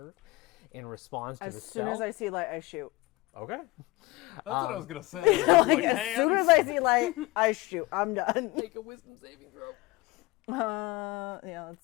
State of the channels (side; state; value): right; quieter; 21.6 dB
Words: in response to the As soon spell. as I see light, I shoot. Okay. That's what I was gonna say. Like, as soon as I see light, I shoot. I'm done. Make a wisdom saving throw. Yeah,